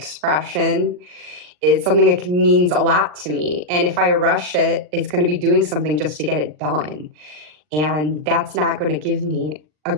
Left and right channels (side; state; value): left; late; 39 ms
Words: It's something that means a lot to me. And if I rush it, it's going to be doing something just to get it done. And that's not going to give me a